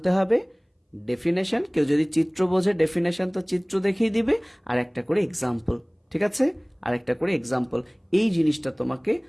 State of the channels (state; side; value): identical; both; correlation 1.00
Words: হবে, ডেফিনেশন। কেউ যদি চিত্র বোঝে, ডেফিনেশন তো চিত্র দেখিয়ে দিবে, আর একটা করে এক্সাম্পল। ঠিক আছে? আর একটা করে এক্সাম্পল। এই জিনিসটা তোমাকে